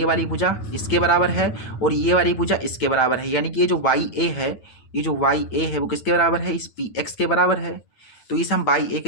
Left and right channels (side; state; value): right; late; 9.0 ms